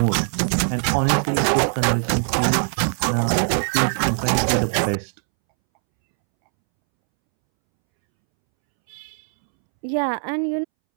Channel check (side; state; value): left; silent; 65 dB below the other